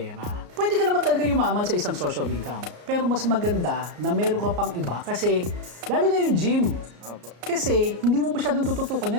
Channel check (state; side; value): late; left; 34 ms